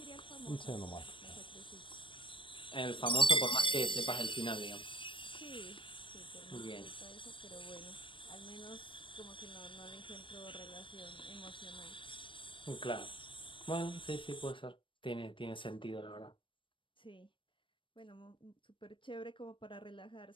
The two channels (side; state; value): right; late; 0.25 ms